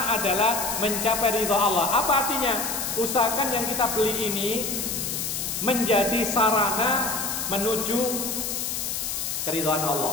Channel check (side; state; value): left; noise; hiss, 2 dB below the sound